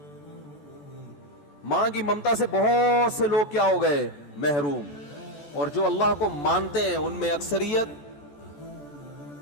ماں کی ممتا سے بہت سے لوگ کیا ہو گئے, محروم. اور جو اللہ کو مانتے ہیں ان میں اکثریت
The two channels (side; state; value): right; late; 14 ms